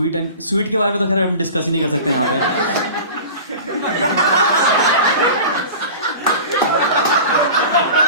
के बारे में तो खैर हम डिस्कस ही नहीं कर सकते यहाँ पे।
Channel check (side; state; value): both; inverted; correlation -0.36